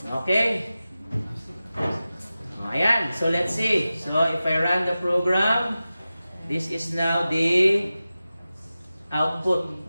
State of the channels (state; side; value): inverted; both; correlation -0.95